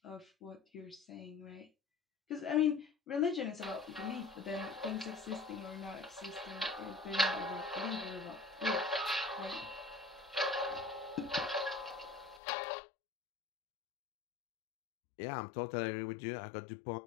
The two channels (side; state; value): right; drops out; at 12.4 s